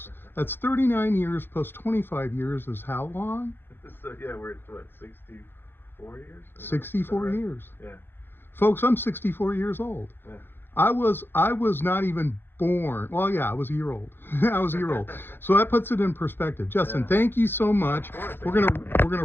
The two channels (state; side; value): late; right; 0.10 ms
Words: That's 39 years plus 25 years is how long? So yeah, we're at what, 64 years? Is that 64 right? years. Yeah. Folks, I'm 64 years old. Yeah. I was not even born. Well, yeah, I was a year old. I was a year old. So that puts it in perspective. Justin, Yeah. thank you so much. We're gonna